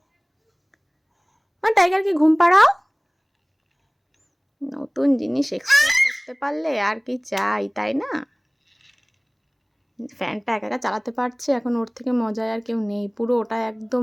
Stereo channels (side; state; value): both; identical; correlation 1.00